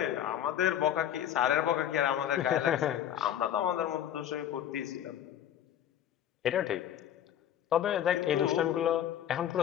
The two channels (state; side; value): quieter; right; 10.5 dB